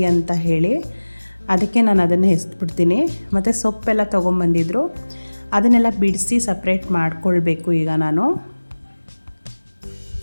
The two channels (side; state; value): both; inverted; correlation -1.00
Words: ಅಂತ ಹೇಳಿ. ಅದಕ್ಕೆ ನಾನು ಅದನ್ನು ಎಸ್ಬಿಡ್ತೀನಿ. ಮತ್ತು ಸೊಪ್ಪೆಲ್ಲ ತೊಗೊಂಬಂದಿದ್ರು, ಅದನ್ನೆಲ್ಲ ಬಿಡಿಸಿ ಸಪ್ರೇಟ್ ಮಾಡ್ಕೊಳ್ಬೇಕು. ಈಗ ನಾನು